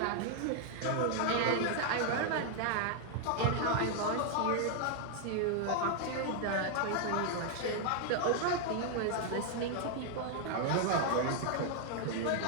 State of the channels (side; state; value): both; different; correlation 0.00